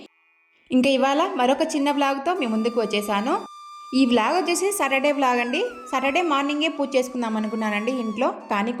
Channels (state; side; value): identical; both; correlation 1.00